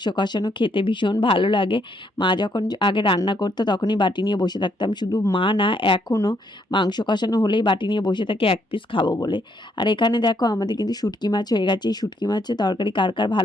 কষানো খেতে ভীষণ ভালো লাগে। মা যখন আগে রান্না করতো তখনই বাটি নিয়ে বসে থাকতাম, শুধু মা না, এখনও মাংস কষানো হলেই বাটি নিয়ে বসে থাকে এক পিস খাবো বলে। আর এখানে দেখো আমাদের কিন্তু শুটকি মাছ হয়ে গেছে। এই শুটকি মাছের তরকারি কার কার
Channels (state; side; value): normal; both; correlation 0.72